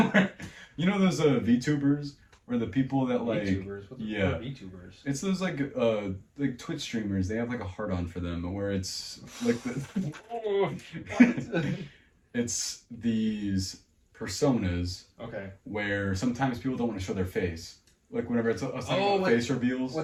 You know those VTubers? Or the people that like VTubers? What are VTubers? It's those like Twitch streamers. They have like a heart on for them, where it's like it's these personas. Okay. Where sometimes people don't want to show their face. Like whenever it's face reveals.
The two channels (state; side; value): identical; both; correlation 1.00